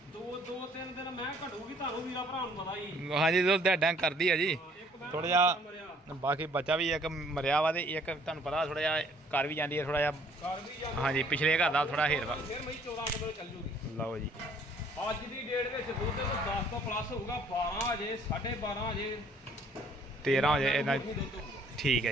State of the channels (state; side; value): normal; both; correlation 0.60